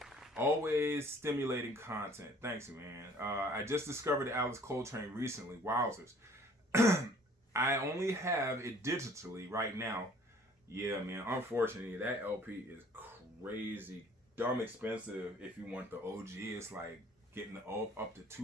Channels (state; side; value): normal; both; correlation 0.54